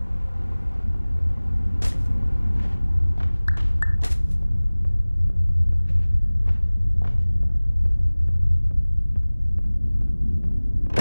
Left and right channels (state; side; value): inverted; both; correlation -1.00